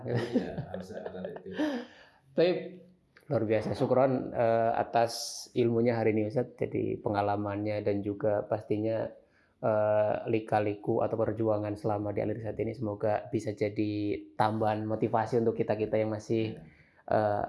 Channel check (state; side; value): identical; both; correlation 1.00